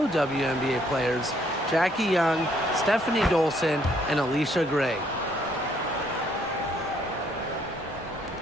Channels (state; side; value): normal; both; correlation 0.67